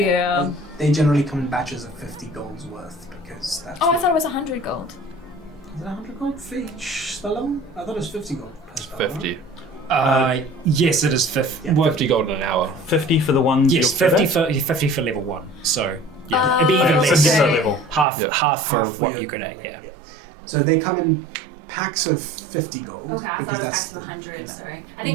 They generally come in batches of 50 gold's worth because that's. Oh, I thought it was 100 gold. Is it 100 gold for each spell? I thought it was 50 gold per spell. 50. Yes, it is 50. Yeah. Well, 50 gold in an hour. 50 for the one yes, you'll get 50 for level 1. So, yeah. It'd be even Okay. less. So different level. Half, Yeah. half for Half what your- you're good at, yeah. So they come in packs of 50 gold. Okay, I thought because it was that's packs of the- 100, sorry. I think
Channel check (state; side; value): drops out; left; at 18.1 s